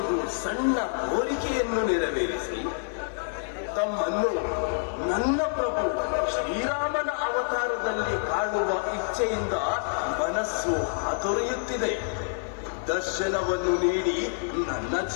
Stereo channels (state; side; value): silent; right; 60 dB below the other